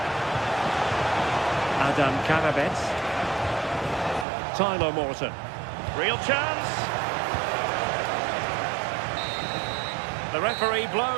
Adam Karabets. Tyler Morton. Real chance. The referee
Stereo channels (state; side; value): drops out; left; at 4.2 s